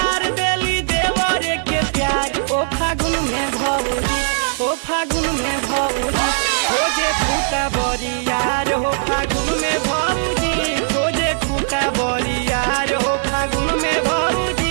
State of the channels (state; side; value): silent; left; digital silence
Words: देली देवरे के प्यार। ओ फागुन में भौजी, ओ फागुन में भौजी खोजे खूटा बरियार। हो फागुन में भौजी खोजे खूटा बरियार। हो फागुन में